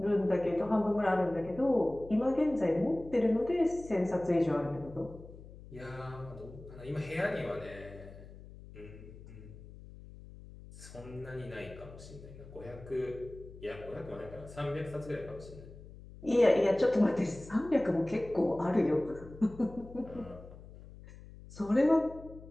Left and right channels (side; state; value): left; noise; hum, 17 dB below the sound